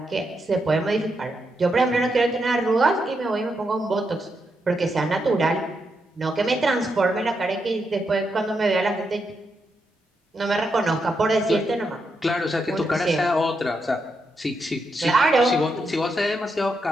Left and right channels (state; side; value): normal; both; correlation 0.82